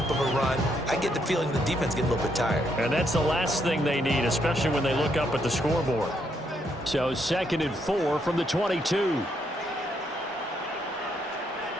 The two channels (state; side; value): normal; both; correlation 0.75